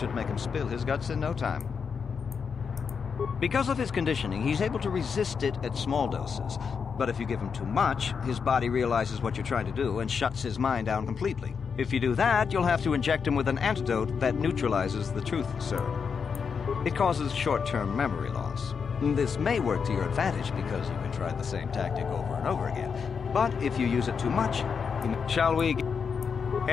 make him spill his guts in no time. Because of his conditioning, he's able to resist it at small doses. But if you give him too much, his body realizes what you're trying to do and shuts his mind down completely. If you do that, you'll have to inject him with an antidote that neutralizes the truth serum. It causes short-term memory loss. This may work to your advantage because you can try the same tactic over and over again. But if you use it too much, shall we...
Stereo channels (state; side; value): quieter; right; 6.1 dB